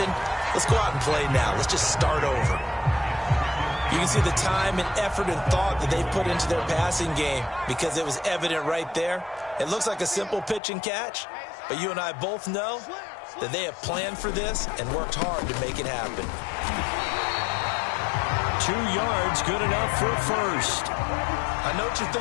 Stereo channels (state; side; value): drops out; right; at 10.6 s